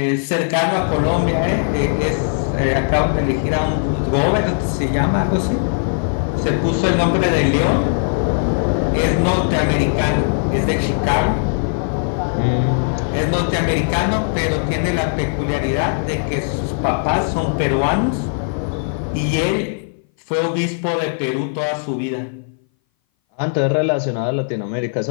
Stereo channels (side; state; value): right; silent; 59 dB below the other